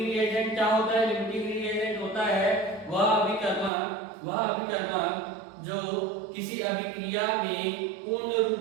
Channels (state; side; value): drops out; left; at 3.7 s